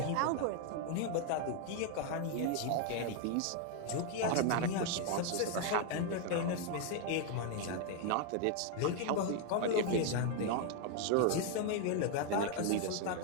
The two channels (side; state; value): both; different; correlation 0.00